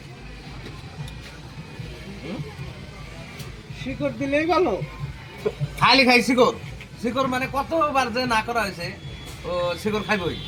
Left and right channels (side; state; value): both; identical; correlation 1.00